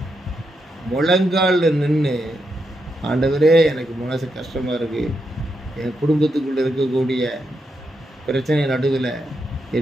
முழங்காலில் நின்று ஆண்டவரே எனக்கு மனசு கஷ்டமாக இருக்குது, என் குடும்பத்துக்குள்ளே இருக்கக்கூடிய பிரச்சனை நடுவில்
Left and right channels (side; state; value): both; normal; correlation 0.83